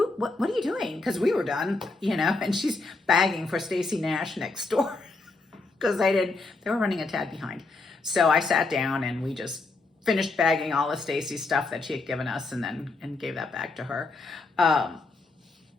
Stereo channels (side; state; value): right; quieter; 3.5 dB